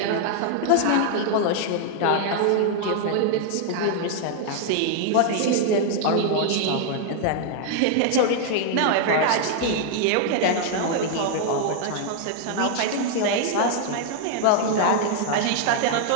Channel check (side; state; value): both; different; correlation 0.00